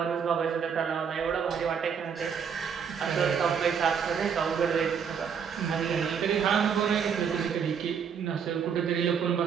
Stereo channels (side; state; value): left; quieter; 7.0 dB